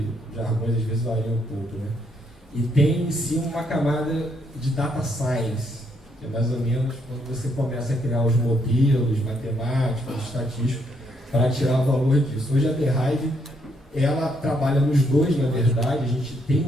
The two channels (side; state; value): both; normal; correlation 0.73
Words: os jargões às vezes variam um pouco, né? E tem em si uma camada de data science, que é mais ou menos quando você começa a criar os modelos matemáticos, estatísticos, para tirar o valor disso. Hoje a The Hive, ela trabalha nos dois, na verdade. A gente tem